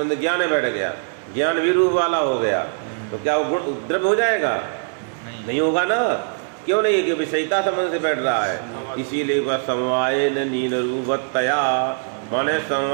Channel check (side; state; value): left; silent; digital silence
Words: ज्ञान में बैठ गया, ज्ञान भी रूप वाला हो गया, तो क्या वो गुण द्रव्य हो जाएगा? नहीं होगा ना। क्यों नहीं? कि विषयिता संबंध से बैठ रहा है। इसीलिए वह समवायेन नील रूपवत्तया, माने